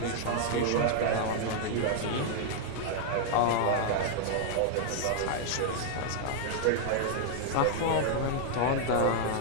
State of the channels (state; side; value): different; both; correlation -0.01